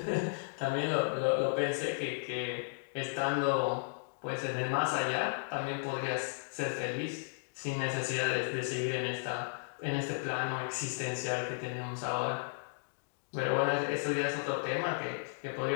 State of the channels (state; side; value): silent; right; digital silence